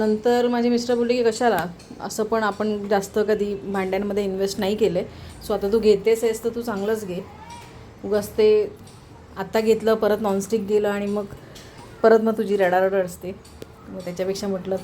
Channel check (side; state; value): both; identical; correlation 1.00